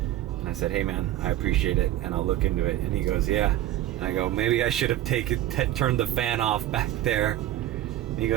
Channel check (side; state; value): left; quieter; 13.5 dB